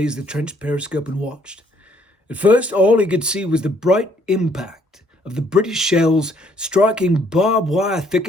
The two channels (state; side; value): normal; both; correlation 0.65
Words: the trench periscope and watched. At first, all he could see was the bright impact of the British shells striking barbed wire